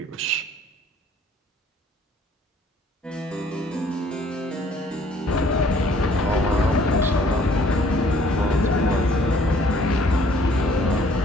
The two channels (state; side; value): normal; both; correlation 0.59